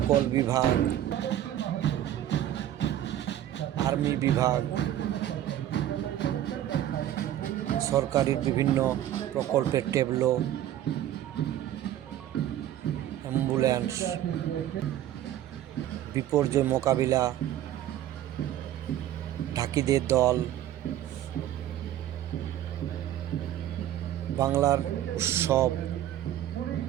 বিভাগ, আর্মি বিভাগ, সরকারি বিভিন্ন প্রকল্পের ট্যাবলো, অ্যাম্বুলেন্স, বিপর্যয় মোকাবিলা, ঢাকিদের দল, বাংলার উৎসব,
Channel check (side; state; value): left; quieter; 12.2 dB